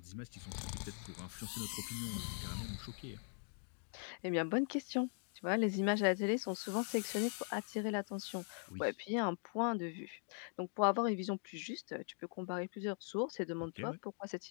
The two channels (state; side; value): silent; right; 50 dB below the other